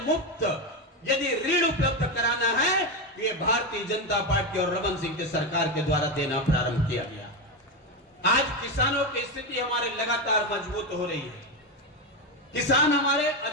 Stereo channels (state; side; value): normal; both; correlation 0.12